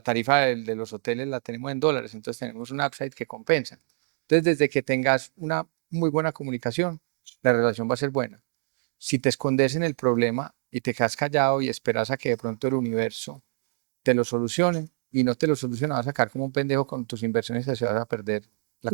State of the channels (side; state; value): left; silent; digital silence